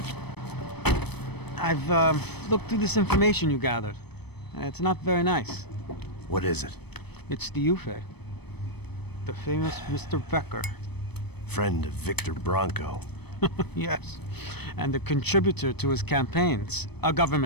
I've looked through this information you gathered. It's not very nice. What is it? It's the UFE. The famous Mr. Becker. Friend of Victor Bronco. Yes. And a contributor to his campaigns. A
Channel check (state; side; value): late; right; 0.98 ms